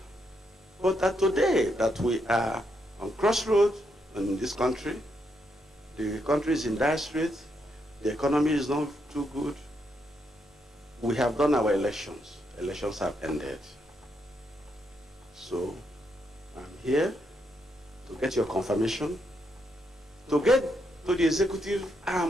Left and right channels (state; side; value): normal; both; correlation 0.79